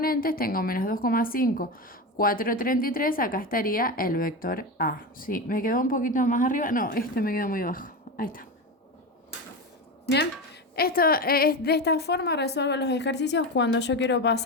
tengo menos 2,5, 4,33, acá estaría el vector A. Sí, me quedó un poquito más arriba. No, este me quedó muy bajo. Ahí está. Bien, de esta forma resuelvo los ejercicios cuando yo quiero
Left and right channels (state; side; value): normal; both; correlation 0.20